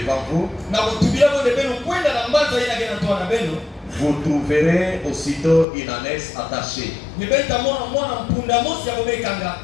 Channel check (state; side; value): drops out; right; at 5.7 s